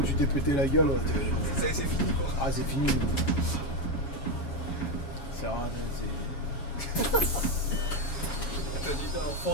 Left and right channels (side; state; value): right; late; 7.1 ms